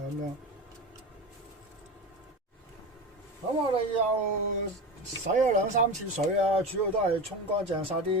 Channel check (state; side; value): normal; both; correlation 0.25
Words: 咁樣。咁我哋又洗咗2、3次水啊，主要都係沖乾淨晒啲